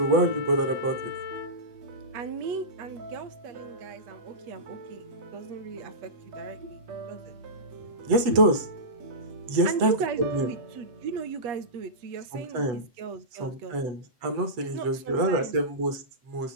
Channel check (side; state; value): left; late; 8.1 ms